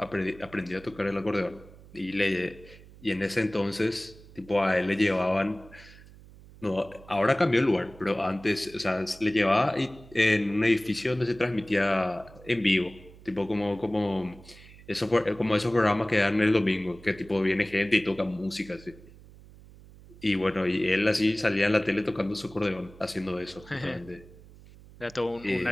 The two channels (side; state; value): right; noise; hum, 21 dB below the sound